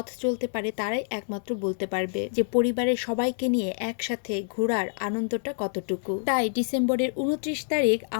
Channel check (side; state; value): right; silent; 60 dB below the other